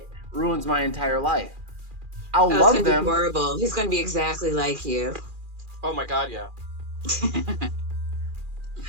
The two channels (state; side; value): late; left; 2.4 ms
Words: ruins my entire life. I'll Oh, love it's gonna them. be horrible. He's gonna be exactly like you. Oh my god, yeah.